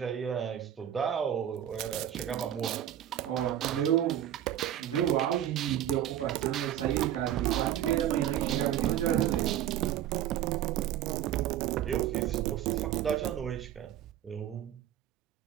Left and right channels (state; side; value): quieter; left; 11.3 dB